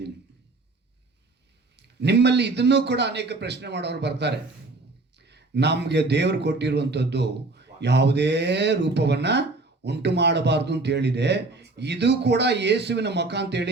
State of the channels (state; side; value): quieter; left; 3.3 dB